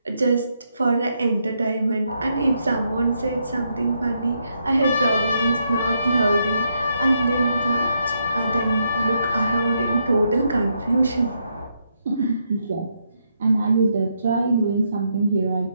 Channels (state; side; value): inverted; both; correlation -0.78